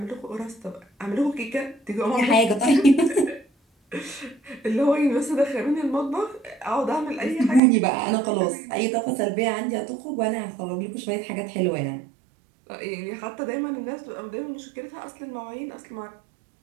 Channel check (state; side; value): drops out; left; at 7.6 s